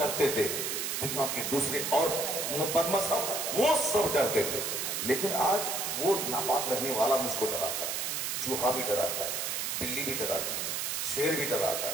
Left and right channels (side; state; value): right; noise; hiss, 1 dB below the sound